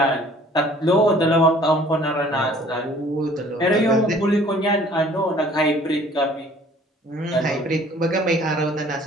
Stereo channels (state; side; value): normal; both; correlation 0.53